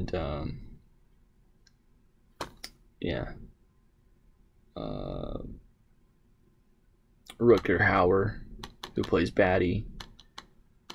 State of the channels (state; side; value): identical; both; correlation 1.00